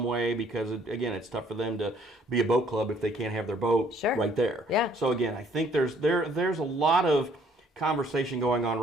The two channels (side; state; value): both; normal; correlation 0.62